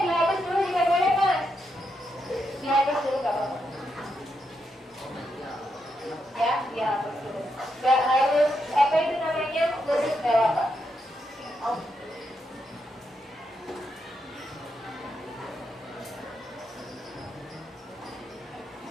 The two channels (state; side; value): normal; both; correlation 0.82